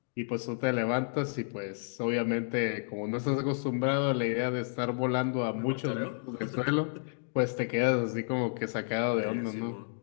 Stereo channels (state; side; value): silent; right; digital silence